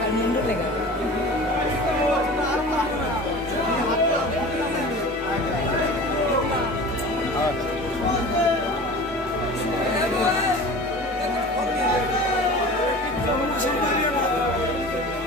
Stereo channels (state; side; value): normal; both; correlation 0.38